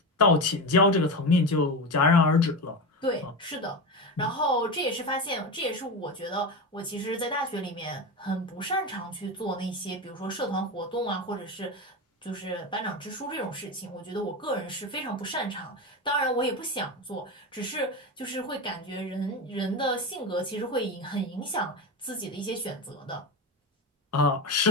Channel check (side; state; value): both; normal; correlation 0.20